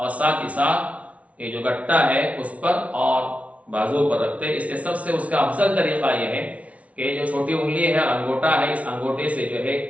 ساتھ ہی ساتھ یہ جو گٹا ہے اس پر اور بازو پر رکھتے۔ اس کے سب سے اس کا افضل طریقہ یہ ہے کہ جو چھوٹی انگلی ہے انگوٹا ہے، اس انگوٹے سے جو ہے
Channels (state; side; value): late; left; 0.066 ms